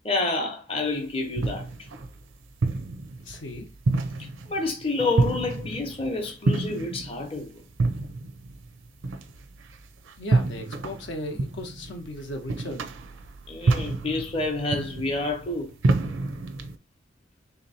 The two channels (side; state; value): both; normal; correlation 0.66